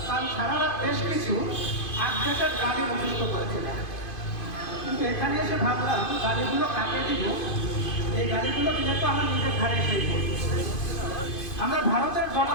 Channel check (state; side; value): late; right; 2.5 ms